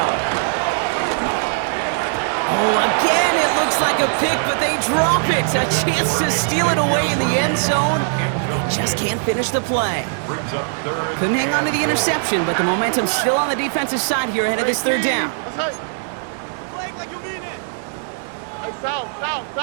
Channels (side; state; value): left; silent; 66 dB below the other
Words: Oh, again, it looks like a pick, but they drop it. A chance to steal it away in the end zone. They just can't finish the play. Couldn't hang on to the interception, but the momentum's still on the defensive side here ahead of this third down. South.